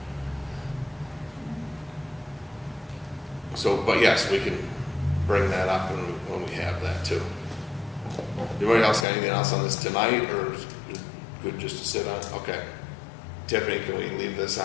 So, but yes, we can bring that up when we have that too. Anybody else got anything else on this tonight, or is it good just to sit on? Okay. Tiffany, can we leave this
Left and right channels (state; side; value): drops out; right; at 9.1 s